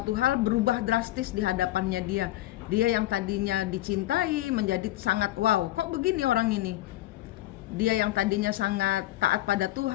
hal berubah drastis di hadapannya dia. Dia yang tadinya dicintai menjadi sangat wow, kok begini orang ini. Dia yang tadinya sangat taat pada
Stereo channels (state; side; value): quieter; right; 15.9 dB